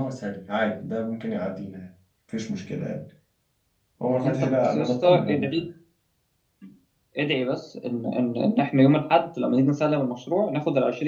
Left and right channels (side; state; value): both; identical; correlation 1.00